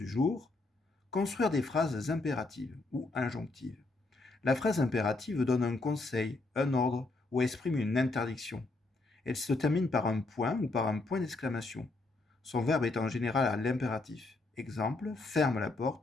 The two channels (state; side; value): quieter; right; 3.3 dB